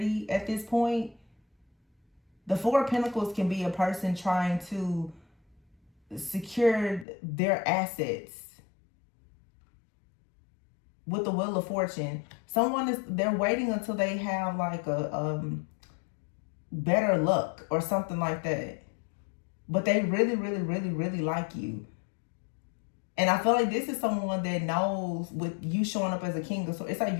at this point. The Four of Pentacles can be a person trying to secure their assets. With the Wheel of Fortune, they're waiting until they have like a better luck or something like that. But they really, really, really, really like you. And I feel like this is someone that knows, with you showing up as a King of Swords, it's like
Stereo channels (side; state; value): right; drops out; at 7.1 s